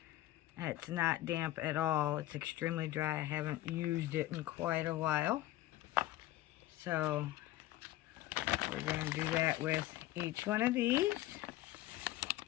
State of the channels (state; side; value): quieter; right; 15.5 dB